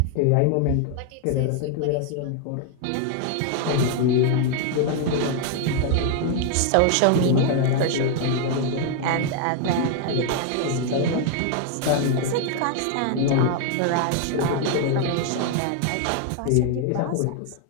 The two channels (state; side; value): different; both; correlation 0.00